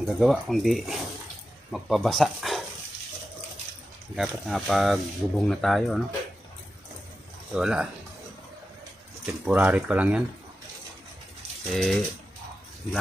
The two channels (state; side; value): normal; both; correlation 0.91